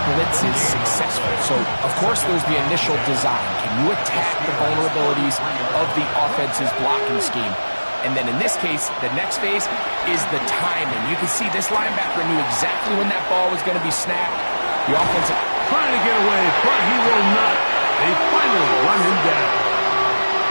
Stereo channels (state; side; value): inverted; both; correlation -1.00